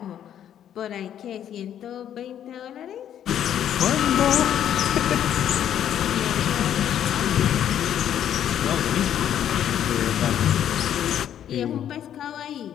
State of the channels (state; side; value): quieter; right; 10.2 dB